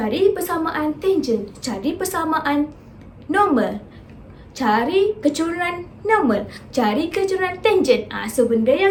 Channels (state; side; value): identical; both; correlation 1.00